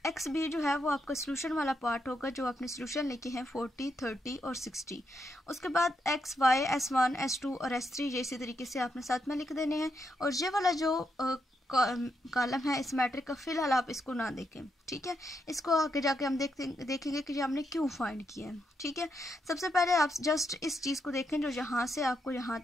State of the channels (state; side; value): normal; both; correlation 0.81